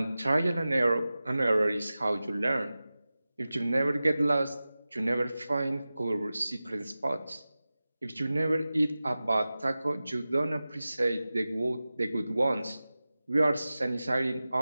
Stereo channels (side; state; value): both; inverted; correlation -0.96